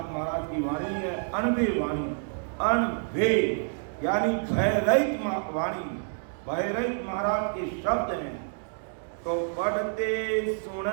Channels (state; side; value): silent; left; digital silence